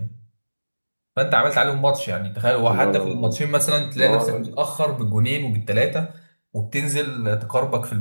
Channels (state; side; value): inverted; both; correlation -1.00